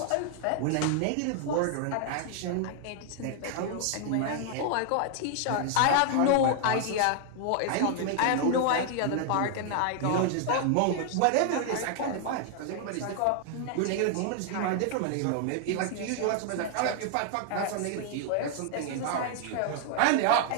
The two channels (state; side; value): different; both; correlation 0.00